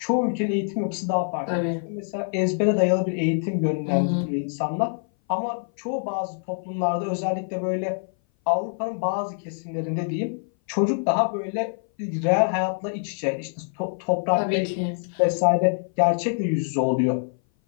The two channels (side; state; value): right; silent; 58 dB below the other